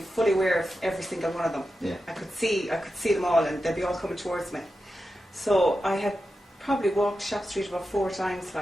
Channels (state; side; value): normal; both; correlation 0.90